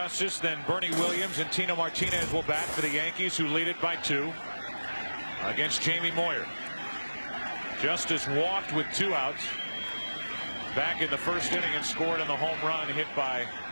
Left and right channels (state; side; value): inverted; both; correlation -1.00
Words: then Bernie Williams and Tino Martinez will bat for the Yankees, who lead it by 2 against Jamie Moyer. Justice walked with 2 outs back in the 1st inning and scored on the home run hit by